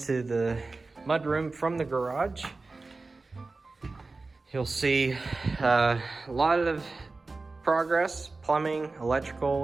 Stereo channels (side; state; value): left; quieter; 3.6 dB